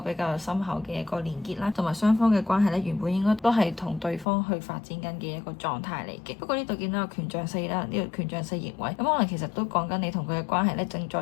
較深厚嘅一個連結啦，同埋雙方嘅關係咧原本應該都係同對方去發展緊嘅一個狀態嚟嘅。不過呢度見到有權杖四啦，呢個權杖四逆位，咁可能其實都講緊你同佢嘅關係咧正在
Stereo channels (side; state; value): right; drops out; at 4.2 s